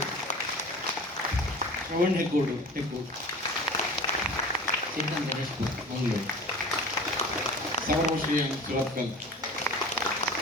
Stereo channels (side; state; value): both; normal; correlation 0.39